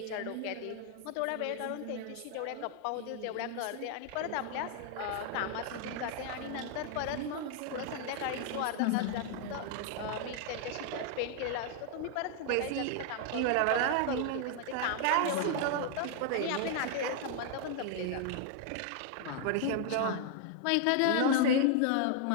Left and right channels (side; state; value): both; different; correlation 0.00